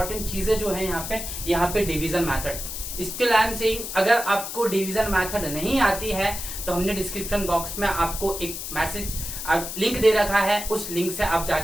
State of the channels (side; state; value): left; noise; hiss, 7 dB below the sound